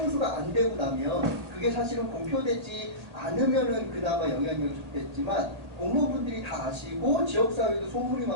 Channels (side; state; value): left; late; 1.8 ms